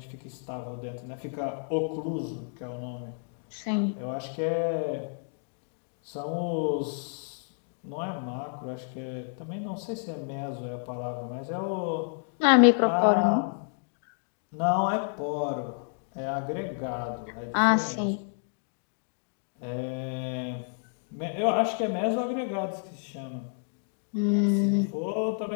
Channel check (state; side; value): silent; right; 58 dB below the other